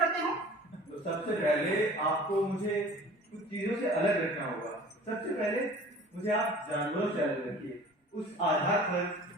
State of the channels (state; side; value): normal; both; correlation 0.45